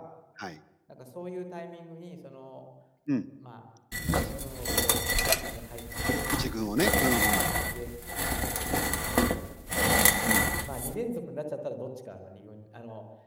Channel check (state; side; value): identical; both; correlation 1.00